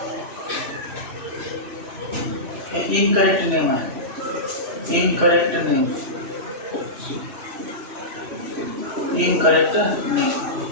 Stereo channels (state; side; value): late; left; 3.0 ms